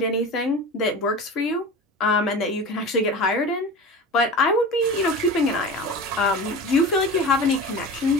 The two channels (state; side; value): normal; both; correlation 0.32